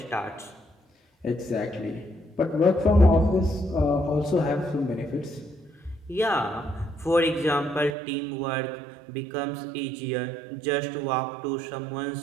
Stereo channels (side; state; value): left; drops out; at 7.9 s